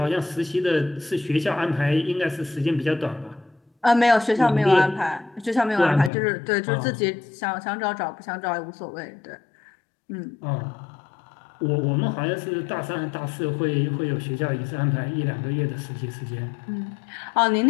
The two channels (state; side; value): drops out; right; at 6.1 s